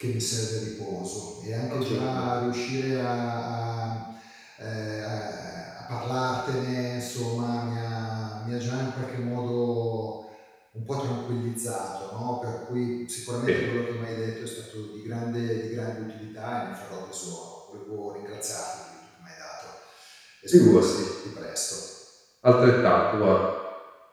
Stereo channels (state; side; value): identical; both; correlation 1.00